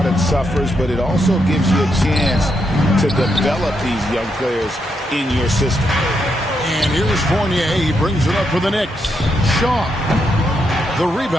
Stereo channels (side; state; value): both; normal; correlation 0.80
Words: suffers, but it also gives you a chance to develop these young players in your system. And here's Fournier. He brings it up for the Knicks. Shaw. The